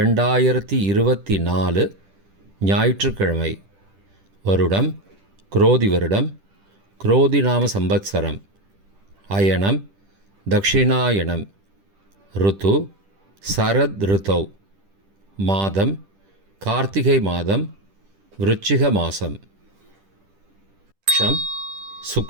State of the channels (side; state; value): left; late; 10 ms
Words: ஞாயிற்றுக்கிழமை. வருடம் குரோதி வருடம், குரோதி நாம சம்பத்சரம். அயனம் தக்ஷிணாயனம். ருத்து சரத் ருத்தௌ. மாதம் கார்த்திகை மாதம், விருச்சிக மாதம். பக்ஷம்